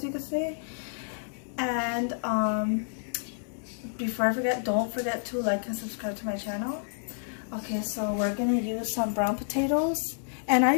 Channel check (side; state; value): right; silent; 58 dB below the other